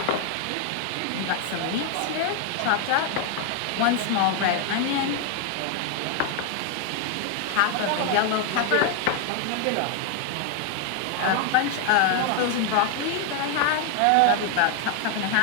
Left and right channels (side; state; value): both; different; correlation 0.00